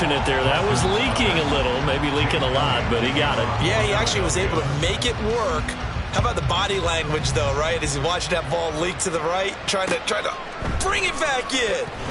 there. That was leaking a little, maybe leaking a lot, but he got it. Yeah, he actually was able to make it work. How about the body language, though, right? As he watched that ball leak to the right, trying to bring it back in,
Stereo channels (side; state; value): both; identical; correlation 1.00